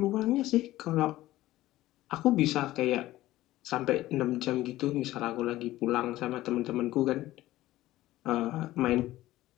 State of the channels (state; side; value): quieter; right; 16.1 dB